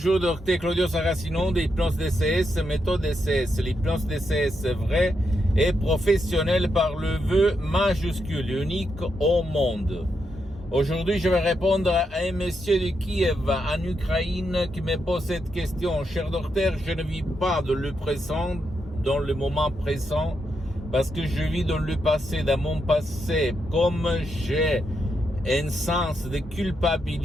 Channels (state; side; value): normal; both; correlation 0.82